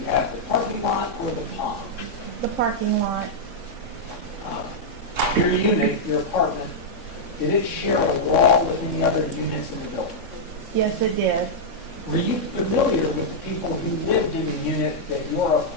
have the parking lot or the pond? The parking lot. Your unit, your apartment, did it share a wall with any other units in the building? Yes, it did. Were you familiar with the people who lived in the unit that your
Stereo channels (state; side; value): late; right; 3.6 ms